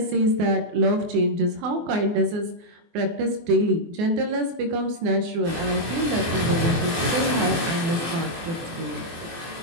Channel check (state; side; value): late; left; 24 ms